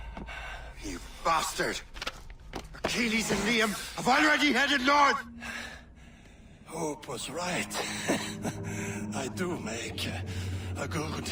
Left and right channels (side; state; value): both; identical; correlation 1.00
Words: You bastard! Achilles and Liam have already headed north! Hope was right. I do make a good